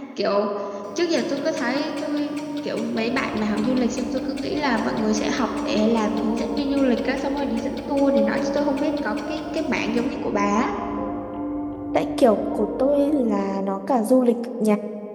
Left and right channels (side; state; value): both; identical; correlation 1.00